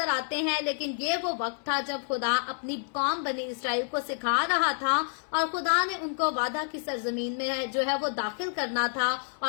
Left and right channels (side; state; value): right; silent; 59 dB below the other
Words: आते हैं, लेकिन ये वो वक्त था जब खुदा अपनी कौम बनी इसराइल को सिखा रहा था और खुदा ने उनको वादा की सरजमीन में जो है वो दाखिल करना था